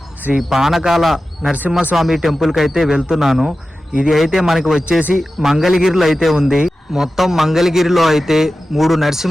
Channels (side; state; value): both; normal; correlation 0.94